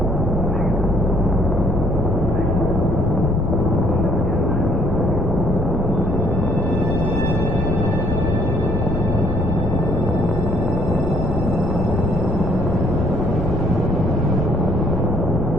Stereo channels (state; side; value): normal; both; correlation 0.62